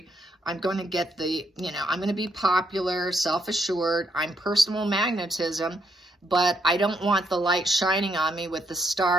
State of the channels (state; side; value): normal; both; correlation 0.75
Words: I'm going to get I'm going to be popular, self-assured. I'm personal magnetism, but I don't want the light shining on me with the